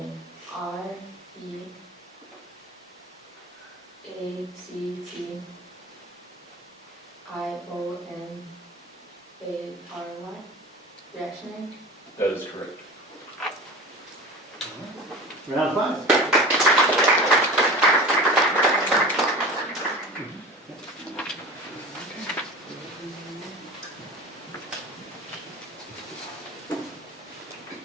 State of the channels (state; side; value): normal; both; correlation 0.35